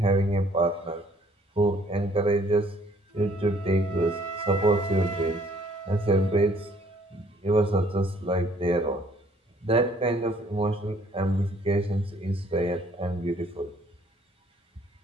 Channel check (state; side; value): normal; both; correlation 0.61